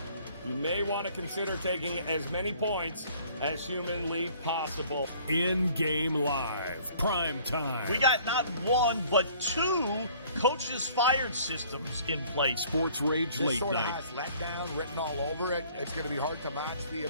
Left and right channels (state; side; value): inverted; both; correlation -0.55